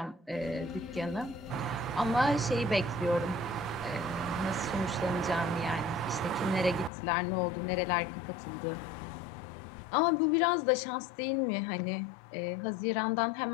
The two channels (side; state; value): right; drops out; at 6.9 s